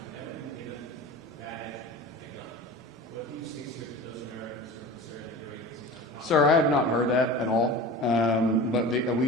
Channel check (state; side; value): normal; both; correlation 0.34